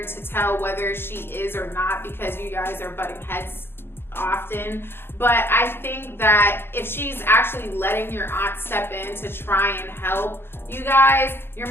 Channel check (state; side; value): late; right; 0.11 ms